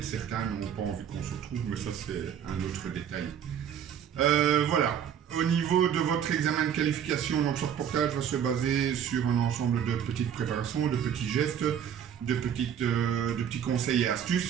certains n'ont pas envie qu'on se retrouve, mais ça c'est un autre détail. Voilà, au niveau de votre examen de qualification, donc ce reportage va se baser sur un ensemble de petites préparations, de petits gestes, de petits conseils et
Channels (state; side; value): quieter; left; 8.8 dB